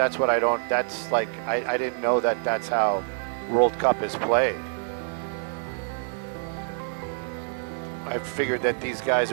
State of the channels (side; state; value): left; silent; digital silence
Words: what I don't. That's like I didn't know that that's how World Cup is played. I figured that these guys,